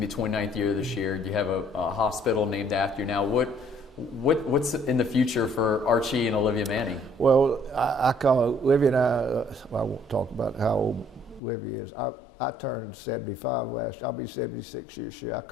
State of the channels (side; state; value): right; drops out; at 11.4 s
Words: to be 29th year this year. You have a hospital named after you now. What's in the future for Archie and Olivia Manning? Well, I call Olivia and I won't talk about how old Olivia is. I turned 75 last year. I'll be 76 this year. I